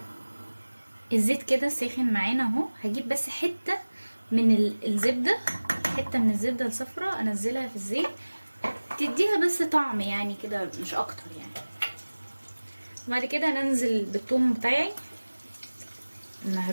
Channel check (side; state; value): both; inverted; correlation -1.00